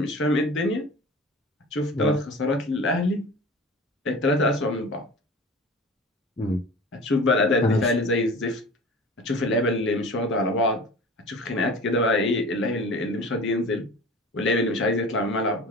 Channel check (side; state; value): both; normal; correlation 0.38